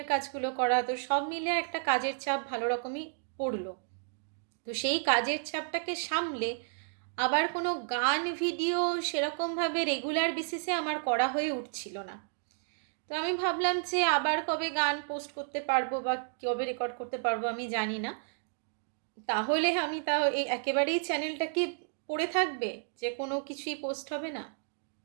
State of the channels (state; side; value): silent; left; digital silence